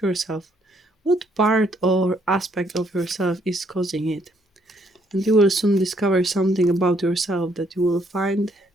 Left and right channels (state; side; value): normal; both; correlation 0.69